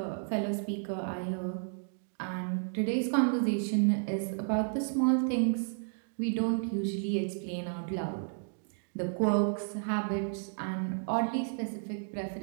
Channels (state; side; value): silent; left; digital silence